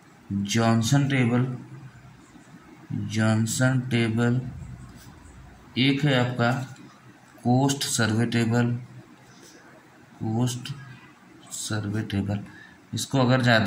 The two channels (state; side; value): identical; both; correlation 1.00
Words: जॉनसन टेबल, एक है आपका कोस्ट सर्वे टेबल। इसको अगर